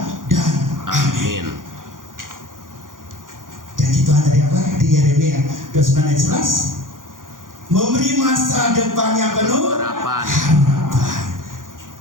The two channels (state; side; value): late; left; 0.89 ms